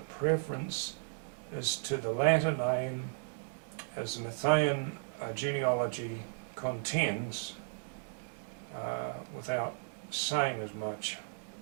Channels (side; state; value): left; silent; digital silence